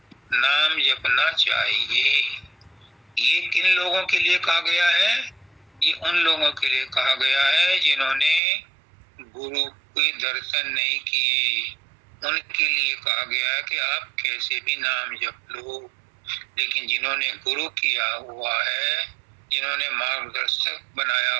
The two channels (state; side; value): drops out; left; at 8.4 s